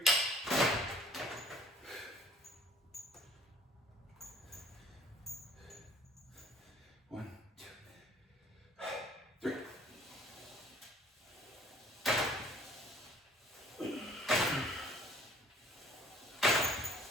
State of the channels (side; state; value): both; normal; correlation 0.54